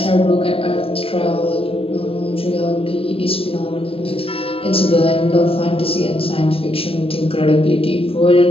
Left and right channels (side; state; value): right; late; 0.27 ms